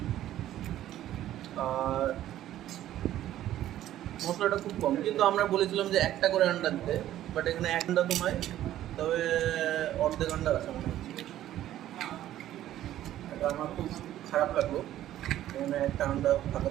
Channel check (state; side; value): quieter; left; 12.9 dB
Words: আর মশলাটা খুব কম। কিন্তু আমরা বলেছিলাম যে একটা করে আন্ডা দিতে, বাট এখানে এক আন্ডা তো নয়, তবে অর্ধেক আন্ডা আছে মনে হচ্ছে। এটা আমার খুব খারাপ লাগলো, এখানে একটা আন্ডা